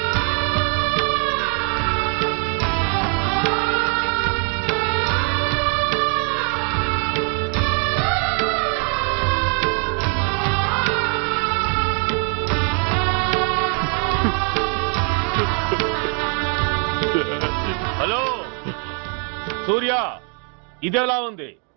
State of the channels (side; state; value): left; quieter; 39.8 dB